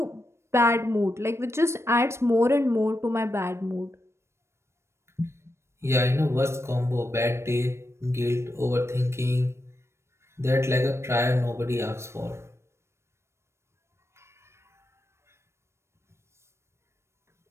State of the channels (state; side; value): late; left; 0.13 ms